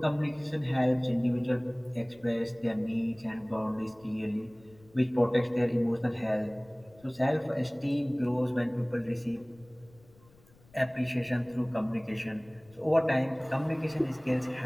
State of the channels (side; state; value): left; noise; rumble, 28 dB below the sound